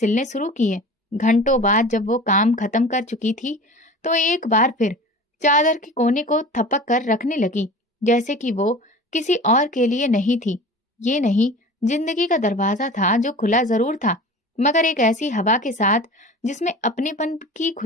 शुरू किए। घंटों बाद जब वो काम खत्म कर चुकी थी, तो एक बार फिर चादर के कोने को थपक कर रखने लगी, जैसे कि वो किसी और के लिए नहीं थी। ये नहीं, जिंदगी का दरवाजा था जो खुला जरूर था, मगर एक ऐसी हवा के साथ जिसमें अपनेपन की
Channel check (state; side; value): normal; both; correlation 0.38